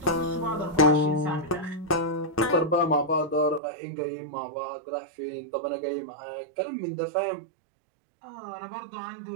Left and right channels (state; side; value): drops out; left; at 3.6 s